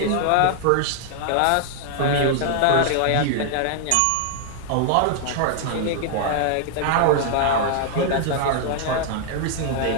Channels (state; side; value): different; both; correlation 0.00